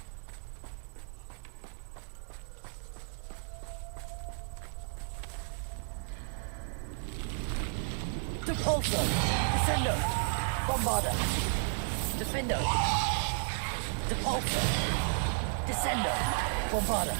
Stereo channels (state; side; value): silent; left; 56 dB below the other